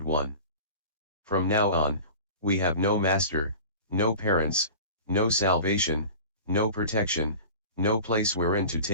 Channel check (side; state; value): both; inverted; correlation -0.38